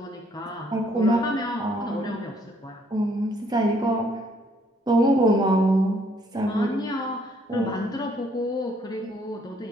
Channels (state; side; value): normal; both; correlation 0.66